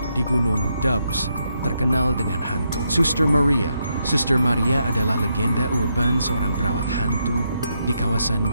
Di Gunung Dabs terkenal dengan hantu Suster Maria. Suster Maria adalah legenda urban seorang perawat hantu di kawasan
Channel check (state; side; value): inverted; both; correlation -0.80